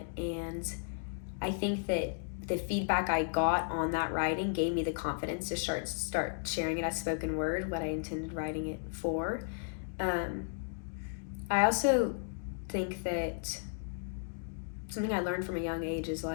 And I think that the feedback I got on that writing gave me the confidence to start sharing it as spoken word, what I intended writing it for. I also think that something I learned from a young age is,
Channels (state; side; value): silent; right; digital silence